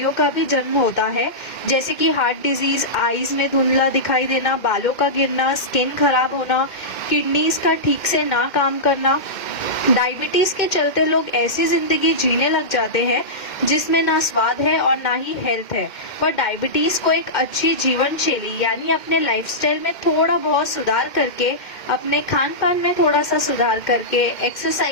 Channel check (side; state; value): right; late; 2.1 ms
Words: का भी जन्म होता है, जैसे कि हार्ट डिजीज, आईज में धुंधला दिखाई देना, बालों का गिरना, स्किन खराब होना, किडनीज का ठीक से ना काम करना। डायबिटीज के चलते लोग ऐसी जिंदगी जीने लग जाते हैं जिसमें ना स्वाद है और ना ही हेल्थ है। पर डायबिटीज को एक अच्छी जीवन शैली यानी अपने लाइफस्टाइल में थोड़ा बहुत सुधार करके, अपने खान पान में थोड़ा सा सुधार करके,